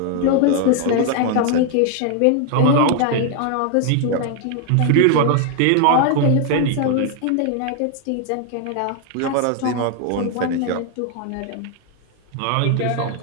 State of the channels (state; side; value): different; both; correlation 0.00